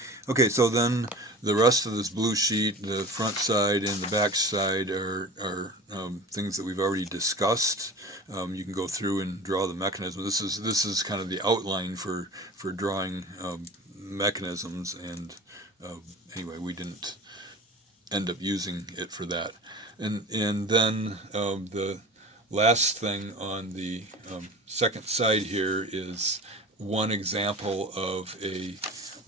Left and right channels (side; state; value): both; normal; correlation 0.37